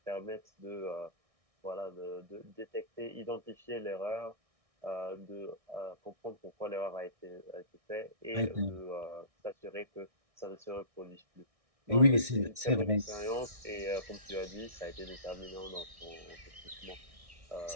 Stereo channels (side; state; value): left; late; 1.6 ms